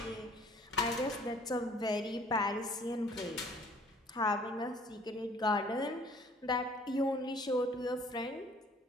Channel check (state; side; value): normal; both; correlation 0.56